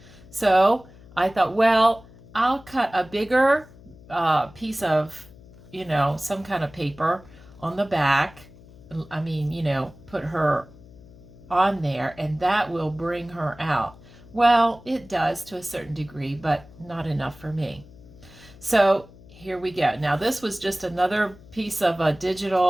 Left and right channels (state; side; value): noise; left; hum, 22 dB below the sound